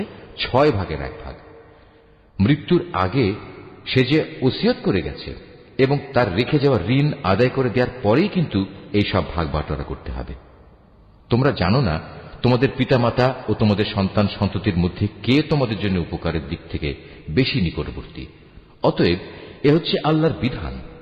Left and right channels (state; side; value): identical; both; correlation 1.00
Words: 6/1। মৃত্যুর আগে সে যে ওসিয়ত করে গেছে এবং তার রেখে যাওয়া ঋণ আদায় করে দেওয়ার পরেই কিন্তু এই সব ভাগ বাটোয়ারা করতে হবে। তোমরা জানো না তোমাদের পিতামাতা ও তোমাদের সন্তান সন্ততির মধ্যে কে তোমাদের জন্য উপকারের দিক থেকে বেশি নিকটবর্তী। অতএব এ হচ্ছে আল্লাহর বিধান।